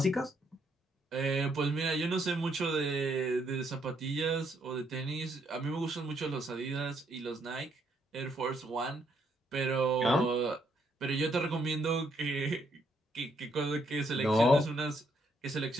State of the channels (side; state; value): both; normal; correlation 0.73